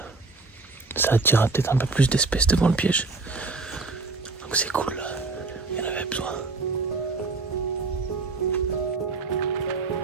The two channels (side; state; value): left; quieter; 3.8 dB